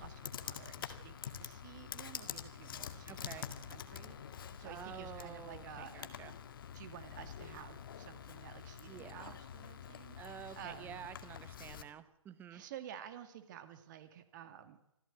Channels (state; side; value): normal; both; correlation -0.13